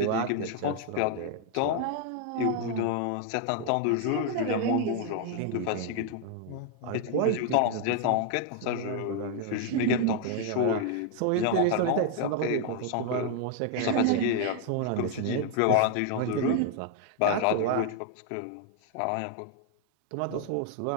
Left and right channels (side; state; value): both; different; correlation 0.00